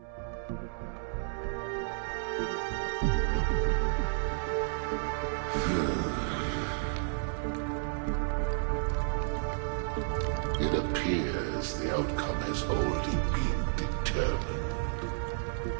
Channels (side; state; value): left; silent; 57 dB below the other